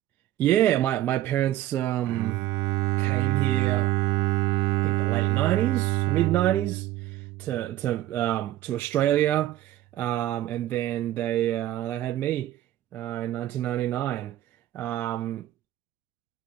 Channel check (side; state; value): left; quieter; 14.2 dB